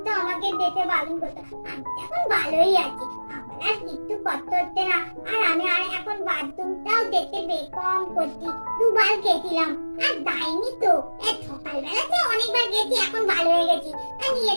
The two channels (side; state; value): both; inverted; correlation -1.00